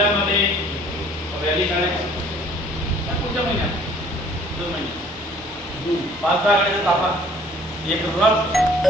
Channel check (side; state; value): both; normal; correlation 0.56